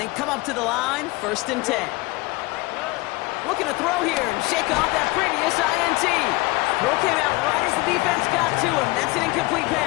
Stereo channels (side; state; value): right; quieter; 22.2 dB